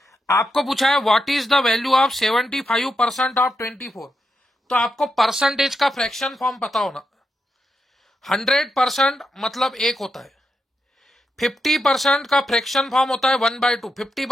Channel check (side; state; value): both; normal; correlation 0.85